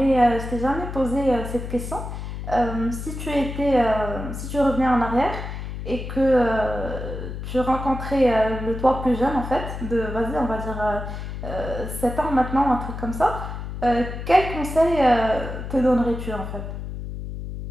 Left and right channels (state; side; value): noise; left; hum, 7 dB below the sound